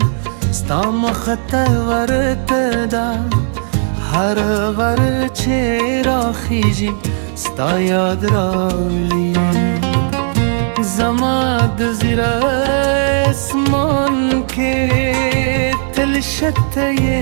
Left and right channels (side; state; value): left; silent; digital silence